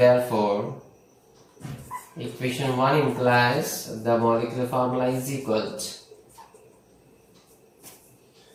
equation 1 implies the molecular formula is equal to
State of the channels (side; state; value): both; identical; correlation 1.00